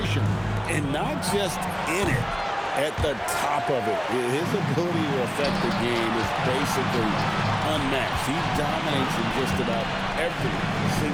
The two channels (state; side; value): identical; both; correlation 1.00